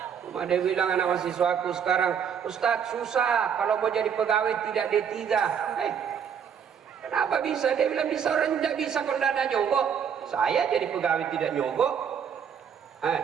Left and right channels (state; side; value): quieter; left; 7.7 dB